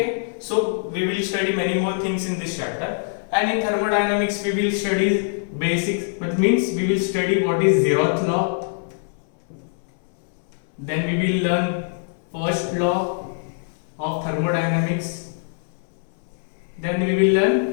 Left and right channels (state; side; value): silent; right; 63 dB below the other